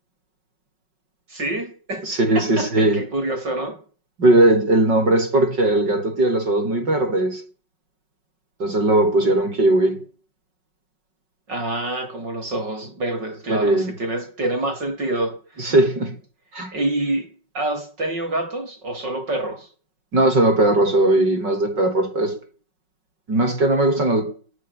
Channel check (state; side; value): late; left; 5.4 ms